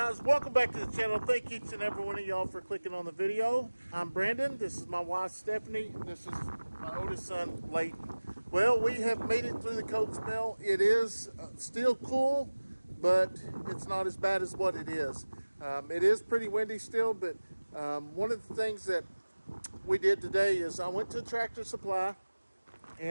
welcome back to the channel. Thank each and every one of y'all for clicking on the video. I'm Brandon. This is my wife Stephanie. This is my oldest son Leighton. Well, we have made it through the cold spell. It is still cool, but it's not as bad as what it is. It is pretty windy still, but one of the things that we did today is I went to Tractor Supply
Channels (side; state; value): both; inverted; correlation -1.00